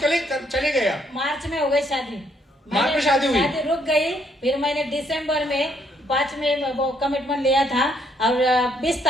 गए आप? मार्च में हो गई शादी। मार्च में शादी हुई? शादी रुक गई। फिर मैंने दिसंबर में 5 में वो कमिटमेंट लिया था, और 20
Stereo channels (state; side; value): normal; both; correlation 0.70